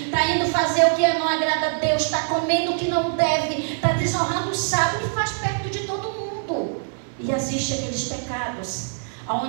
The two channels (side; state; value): left; silent; digital silence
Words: está indo fazer o que não agrada a Deus, está comendo o que não deve, está desonrando o sábado e faz perto de todo mundo. E existem aqueles pecados